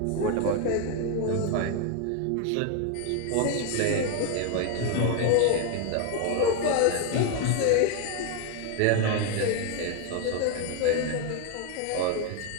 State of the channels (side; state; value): both; different; correlation 0.01